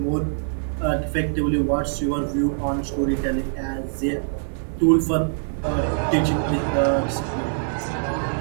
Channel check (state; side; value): silent; left; digital silence